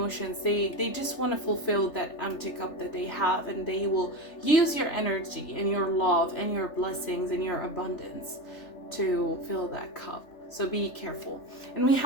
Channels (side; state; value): right; late; 3.4 ms